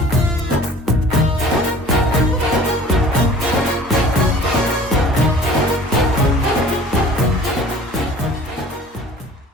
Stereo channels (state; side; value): normal; both; correlation 0.47